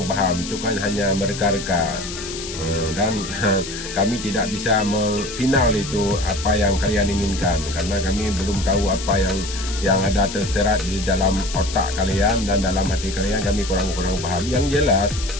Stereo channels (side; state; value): left; noise; hiss, 9 dB below the sound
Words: paham, itu kan hanya mereka-reka, dan kami tidak bisa final itu apa yang kalian inginkan, karena kami belum tahu apa yang ada terserat di dalam otak kalian dan dalam hati kalian, kami kurang paham. Yang jelas